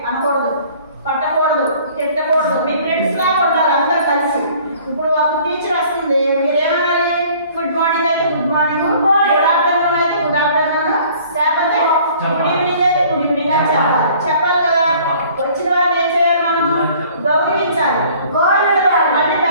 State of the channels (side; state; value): both; inverted; correlation -0.53